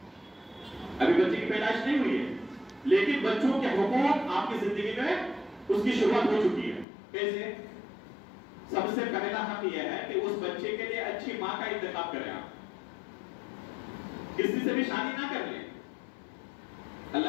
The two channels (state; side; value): drops out; right; at 6.9 s